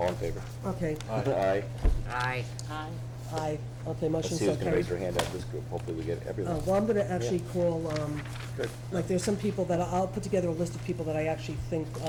in favor? okay, Aye. Aye. aye. Okay, Let's motion see so who's gonna raise their carried. hand out of this group. Hopefully we get everyone. Well, I'm gonna actually call, Good. like, there's some people that, I'll put together a list of people that I actually think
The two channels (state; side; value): identical; both; correlation 1.00